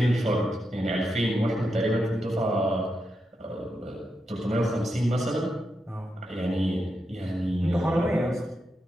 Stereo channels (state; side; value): normal; both; correlation 0.86